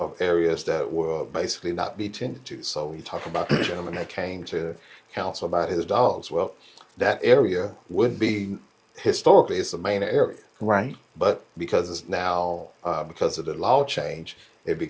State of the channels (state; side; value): identical; both; correlation 1.00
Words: areas that will basically not be tended to. So when you talk about the gentleman that came to council about his dogs, well, that area would be historically it's the main area, Right. but because it's now because of the law change, it